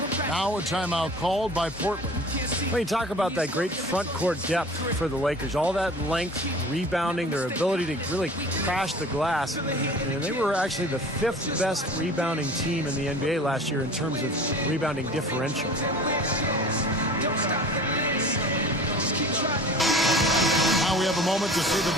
Now a timeout called by Portland. Well, you talk about that great front court depth for the Lakers. All that length, rebounding, their ability to really crash the glass. And they were actually the 5th best rebounding team in the NBA last year in terms of rebounding differential. Now we have a moment to see the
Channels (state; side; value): normal; both; correlation 0.42